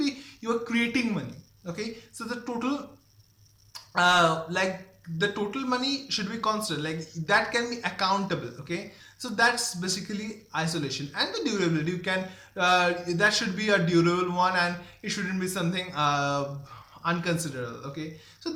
you are creating money. Okay, so the total like the total money should be constant, like that can be accountable. Okay, so that's basically isolation. And the durability, you can that should be a durable one, and it shouldn't be something unconsiderable. Okay, so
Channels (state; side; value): identical; both; correlation 1.00